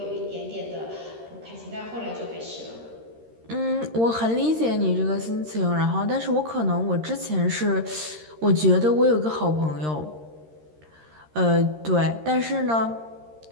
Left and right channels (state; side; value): late; left; 13 ms